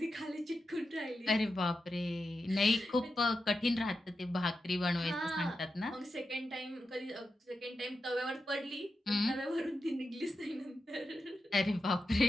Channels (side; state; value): both; normal; correlation 0.89